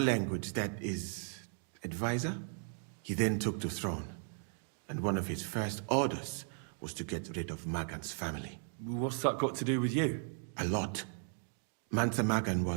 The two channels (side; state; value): left; silent; 53 dB below the other